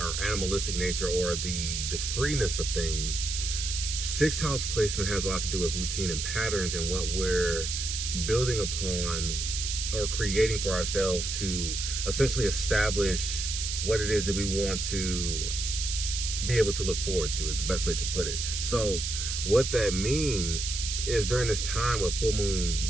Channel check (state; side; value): noise; right; hiss, 3 dB below the sound